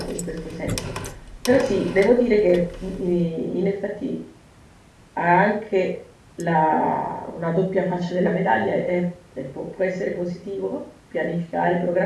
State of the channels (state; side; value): identical; both; correlation 1.00